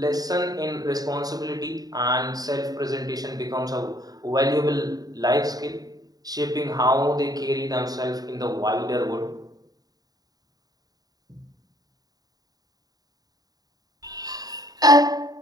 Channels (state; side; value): late; left; 0.18 ms